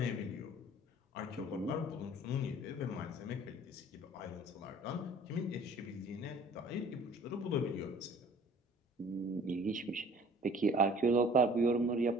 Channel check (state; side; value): normal; both; correlation 0.50